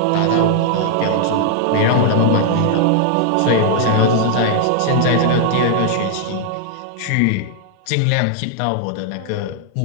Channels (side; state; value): both; different; correlation 0.00